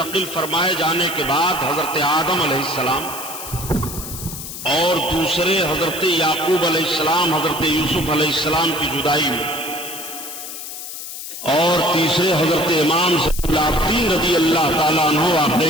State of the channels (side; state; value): left; noise; hiss, 9 dB below the sound